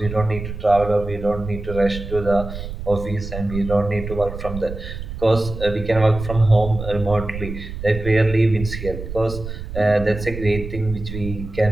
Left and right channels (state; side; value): noise; right; rumble, 9 dB below the sound